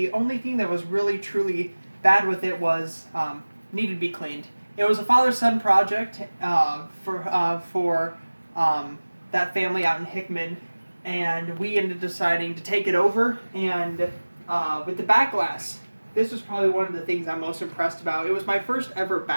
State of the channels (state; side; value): inverted; both; correlation -1.00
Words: only thing that was really truly bad with it was needed to be cleaned. It was a father-son project for that family out in Hickman, and we ended up deciding to take it over, and with the back glass, this was probably one of the things I'm most impressed about. It was my first ever